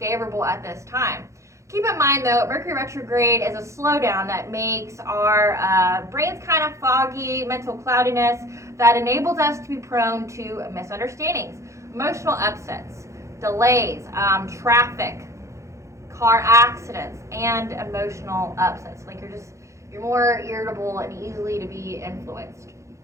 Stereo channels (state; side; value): late; left; 0.14 ms